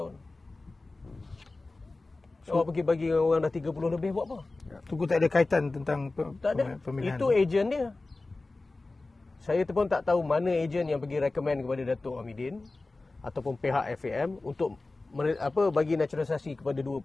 Awak pergi bagi orang dah 30 lebih buat apa? Tunku tak ada kaitan tentang Tak ada. pemilihan. Itu ejen dia. Saya pun tak tahu mana ejen yang pergi recommend kepada Datuk Hamidin ataupun pihak FAM untuk bagi naturalisasi kepada dua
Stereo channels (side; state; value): right; quieter; 3.3 dB